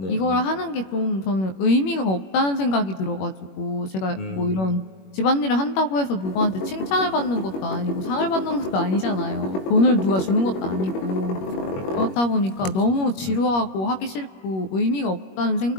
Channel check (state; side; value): late; right; 21 ms